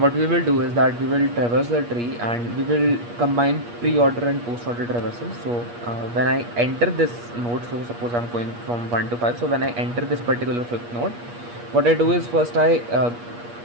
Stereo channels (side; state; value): left; late; 8.4 ms